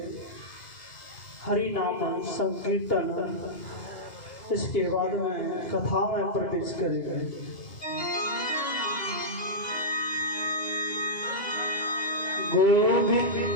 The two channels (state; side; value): late; right; 2.8 ms